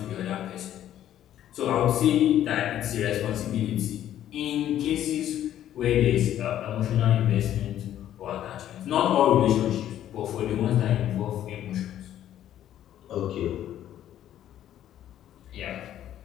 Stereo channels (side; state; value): right; quieter; 11.6 dB